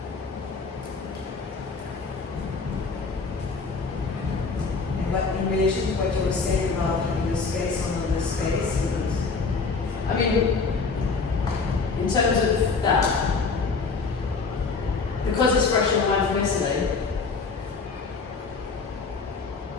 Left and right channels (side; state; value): right; quieter; 4.5 dB